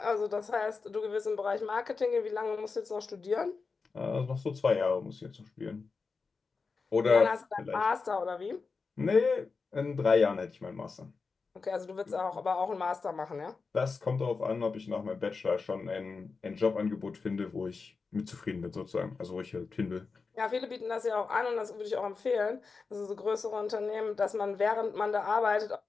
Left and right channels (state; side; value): quieter; right; 4.6 dB